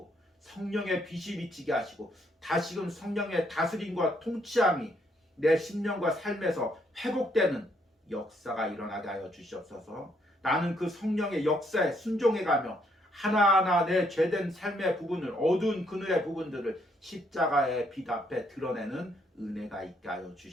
성령의 빛이 비치게 하시고 다시금 성령의 다스림과 통치함이 내 심령과 삶에서 회복되는 역사가 일어나게 하여 주시옵소서. 나는 그 성령의 역사에 순종해가며 하나하나 내 죄된 삶의 부분을, 어두운 그늘의 부분들을 십자가의 빛 앞에 드러내는 은혜가 있게 하여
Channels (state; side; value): normal; both; correlation 0.71